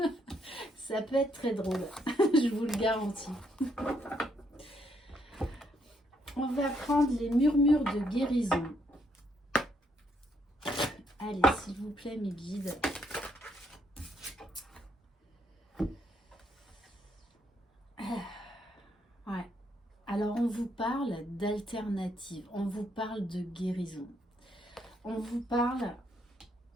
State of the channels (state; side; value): normal; both; correlation 0.73